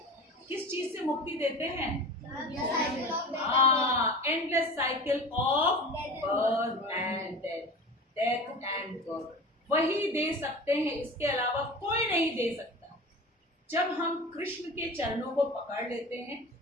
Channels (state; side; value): normal; both; correlation 0.34